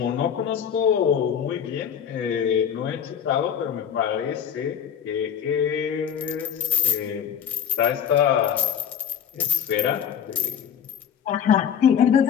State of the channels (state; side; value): quieter; right; 8.6 dB